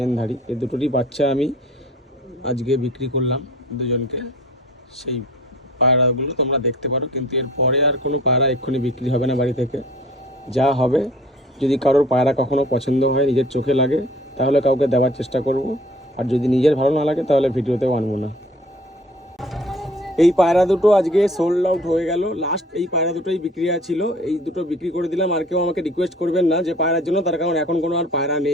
ধাড়ি, এই দুটোরই বাচ্চা আমি আজকে বিক্রি করলাম দুজনকে। সেই পায়রাগুলো তোমরা দেখতে পারো, কিন্তু এর পরে আর কোনো পায়রা এক্ষুনি বিক্রি হবে না বাড়ি থেকে। যা হবে, যদি কারোর পায়রা কখনো পছন্দ হয়, নিজের চোখে লাগে, তাহলে কাউকে দেওয়ার চেষ্টা করব, আর যদি নিজের ভালো না লাগে তাহলে ভিডিওতেও আনবো না। এই পায়রা দুটো আজকে সোল্ড আউট হয়ে গেল, লাস্ট এই পায়রা দুটোই বিক্রি ছিল, এই দুটো বিক্রি করে দিলাম। আর কেউ আমাকে রিকোয়েস্ট করবেন না যে পায়রার জন্য, তার কারণ এখন কোনো আর পায়রা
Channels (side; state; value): both; normal; correlation 0.49